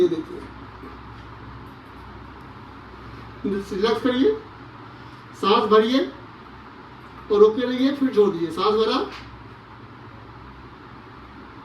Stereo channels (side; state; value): both; identical; correlation 1.00